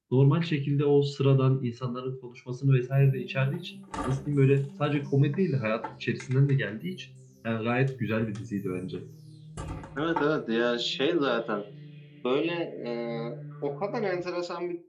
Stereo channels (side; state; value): both; identical; correlation 1.00